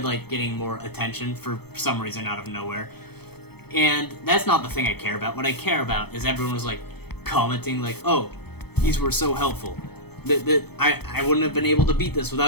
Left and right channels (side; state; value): right; late; 0.97 ms